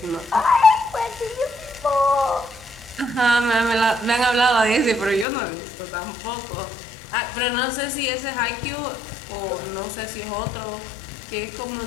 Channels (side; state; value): right; drops out; at 5.2 s